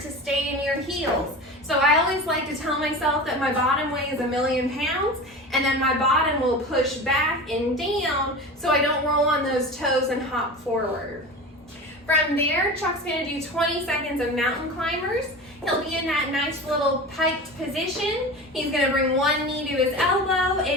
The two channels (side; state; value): both; normal; correlation 0.31